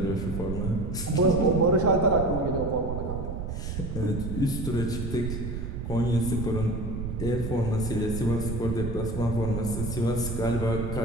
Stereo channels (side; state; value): right; noise; rumble, 5 dB below the sound